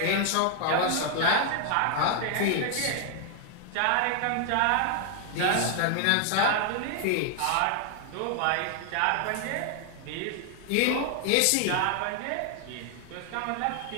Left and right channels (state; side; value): different; both; correlation 0.00